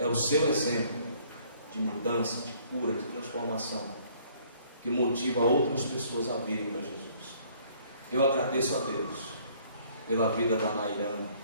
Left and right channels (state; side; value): inverted; both; correlation -0.60